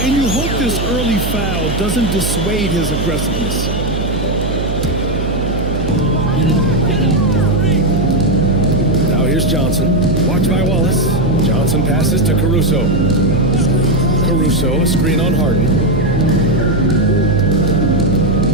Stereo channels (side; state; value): right; noise; hum, 4 dB below the sound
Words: And you hope this early foul doesn't dissuade his aggressiveness. Now here's Johnson. Watch by Wallace. Johnson passes to Caruso. Caruso, a screen on Harden.